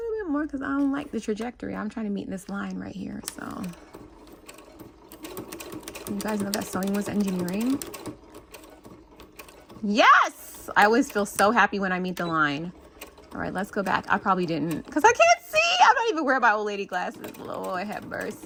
more because I don't like the trajectory. I'm trying to meet this line right here, so. You guys know that sewing was engineering? Yes! I always feel so happy when I meet the line. All right, let's go back. I probably didn't, because I can't see. I'm not even wearing my old lady glasses. Lord have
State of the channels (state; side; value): identical; both; correlation 1.00